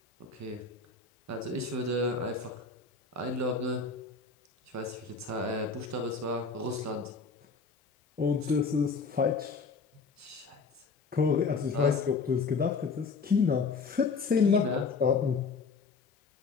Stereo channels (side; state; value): right; quieter; 4.7 dB